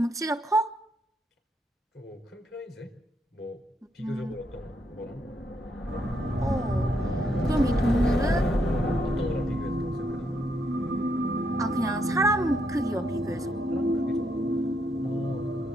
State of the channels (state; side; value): normal; both; correlation 0.77